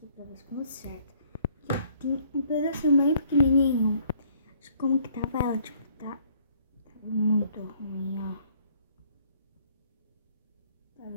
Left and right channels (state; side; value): inverted; both; correlation -0.62